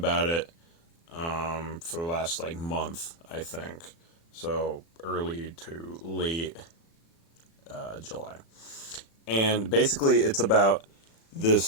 it for the last month, I think. So early to late July. And basically, it's about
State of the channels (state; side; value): late; right; 36 ms